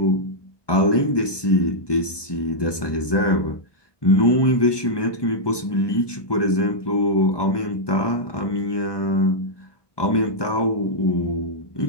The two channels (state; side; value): late; right; 1.2 ms